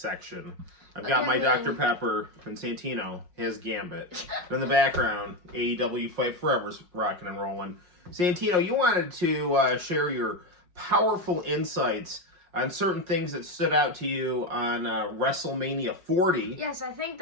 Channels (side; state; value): left; late; 5.7 ms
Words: I've got my Dr. Pepper and Santino, his Gambit. And in the background, AEW Fight Forever's rocking and rolling. Santino, you wanted to share your powerful insights on certain things that stood out to you on Wrestlemania 40. Yes, I think